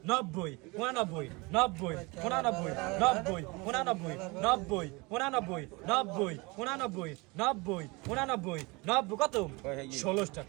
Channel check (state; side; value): quieter; left; 26.1 dB